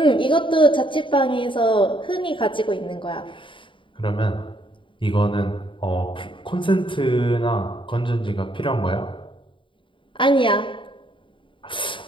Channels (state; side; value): late; right; 0.24 ms